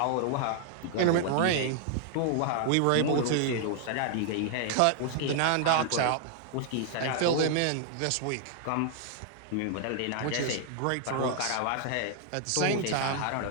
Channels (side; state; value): both; different; correlation 0.00